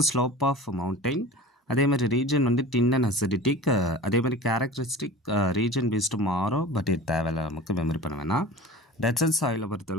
ஸ்லோப் ஆஃப் மவுண்டைன். அதே மாதிரி ரீஜன் வந்து டின் அண்ட் அசிடிட்டிக். அதே மாதிரி கேரக்டரிஸ்டிக் ரீஜன் பேஸ்டு மாறும், பட் இது தேவையில்லை, நமக்கு மெமரி பண்ண வேணாம். டெசர்ட் சாயிலை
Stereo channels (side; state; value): both; normal; correlation 0.37